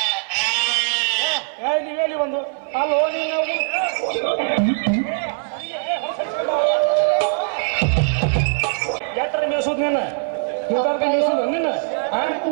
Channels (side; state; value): left; silent; 58 dB below the other